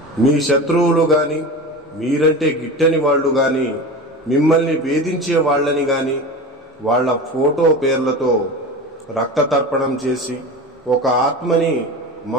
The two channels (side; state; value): both; normal; correlation 0.29